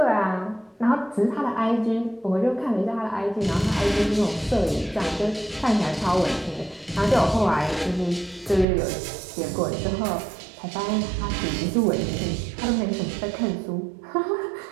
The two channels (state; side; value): drops out; left; at 8.7 s